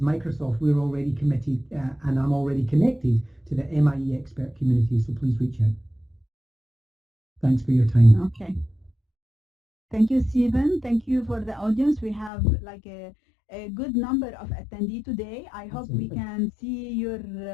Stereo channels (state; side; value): drops out; right; at 12.3 s